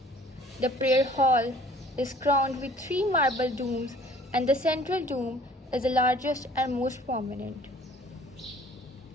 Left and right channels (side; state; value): both; normal; correlation 0.53